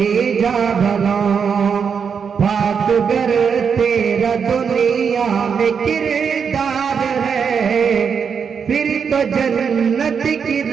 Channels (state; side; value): quieter; left; 6.5 dB